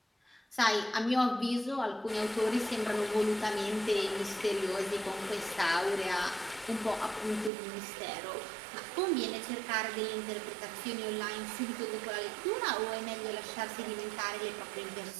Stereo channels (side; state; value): left; drops out; at 7.5 s